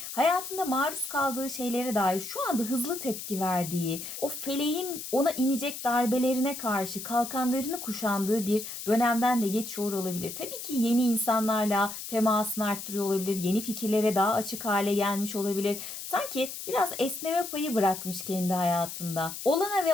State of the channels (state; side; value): noise; left; hiss, 9 dB below the sound